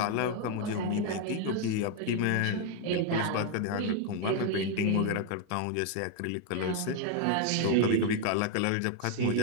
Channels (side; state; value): both; different; correlation 0.01